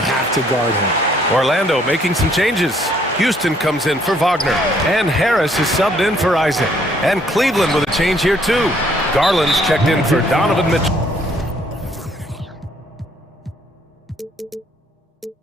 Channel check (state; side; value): normal; both; correlation 0.65